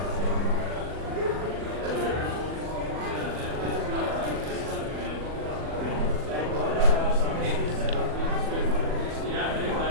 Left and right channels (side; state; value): left; late; 40 ms